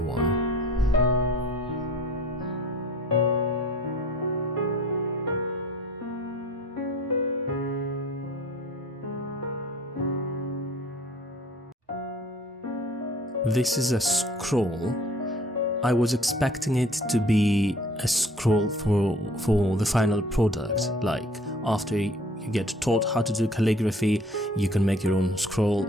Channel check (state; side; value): normal; both; correlation 0.51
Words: This is a scroll. I was expecting it to be a scroll for the final product, like after you get taught how to do calligraphy, you can make your own scroll,